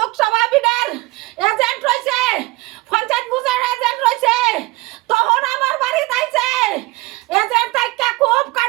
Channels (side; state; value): left; quieter; 21.7 dB